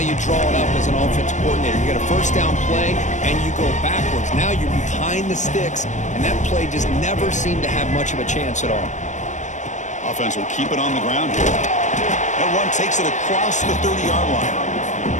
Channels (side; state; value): right; late; 0.35 ms